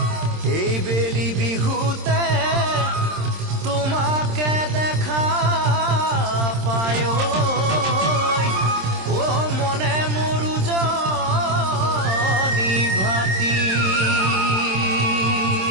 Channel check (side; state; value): left; late; 26 ms